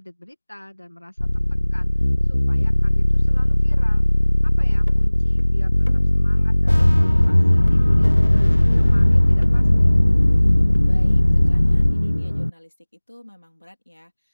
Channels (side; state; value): both; inverted; correlation -1.00